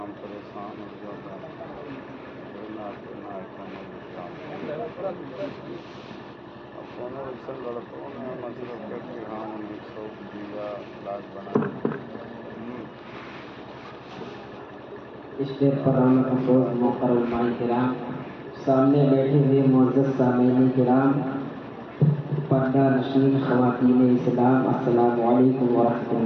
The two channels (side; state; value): both; identical; correlation 1.00